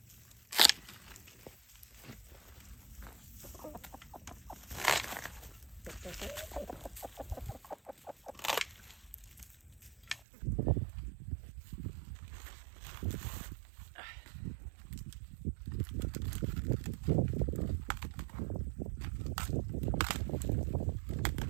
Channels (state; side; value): drops out; left; at 10.2 s